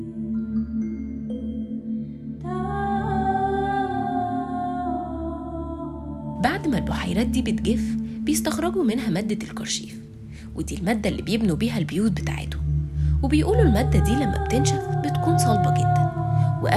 بعد ما البحيرات دي بتجف بيستخرجوا منها مادة الكرشيف، ودي المادة اللي بيبنوا بيها البيوت بتاعتهم. وبيقولوا المادة دي لما بتنشف بتكون صلبة جدا،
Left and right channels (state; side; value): identical; both; correlation 1.00